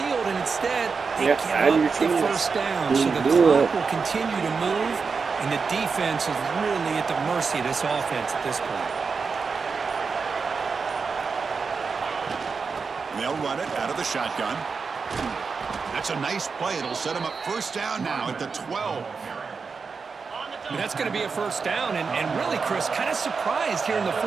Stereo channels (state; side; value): quieter; left; 5.1 dB